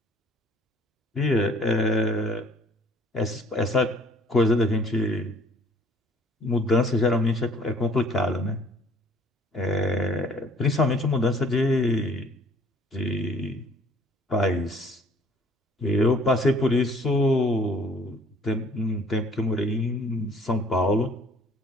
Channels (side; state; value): both; normal; correlation 0.55